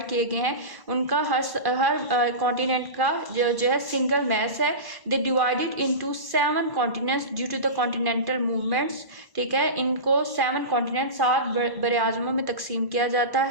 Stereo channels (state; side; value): late; left; 1.1 ms